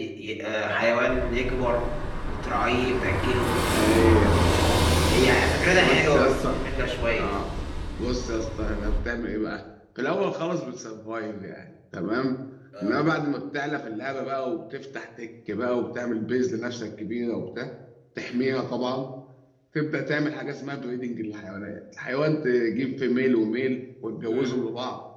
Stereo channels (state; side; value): identical; both; correlation 1.00